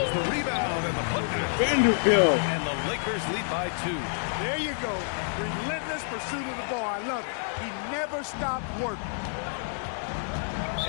the rebound and the putback. Vanderbilt. And the Lakers lead by 2. There you go. Relentless pursuit of the ball. I love it. He never stopped working.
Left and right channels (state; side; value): silent; right; 59 dB below the other